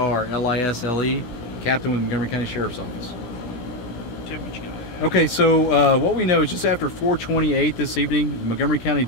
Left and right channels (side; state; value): right; late; 17 ms